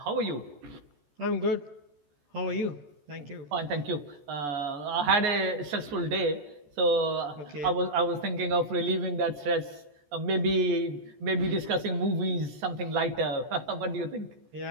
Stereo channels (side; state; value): left; late; 14 ms